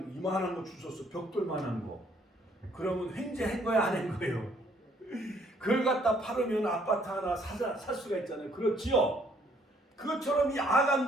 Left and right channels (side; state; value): both; normal; correlation 0.65